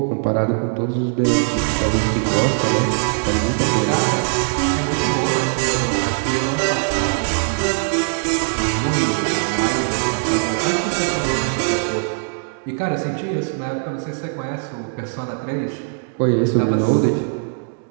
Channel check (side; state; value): left; silent; digital silence